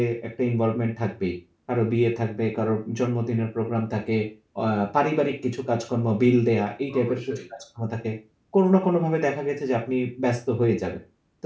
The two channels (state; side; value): identical; both; correlation 1.00